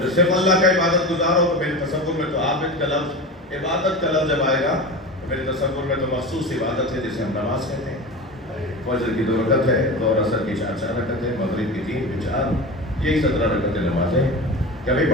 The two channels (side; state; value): both; normal; correlation 0.28